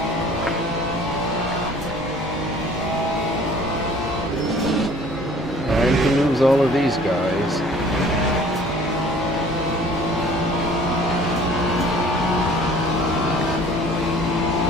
Time to lose all of these guys.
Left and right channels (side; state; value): both; normal; correlation 0.51